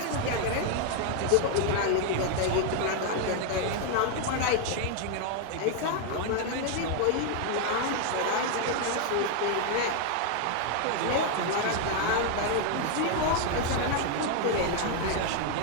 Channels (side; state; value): both; different; correlation 0.01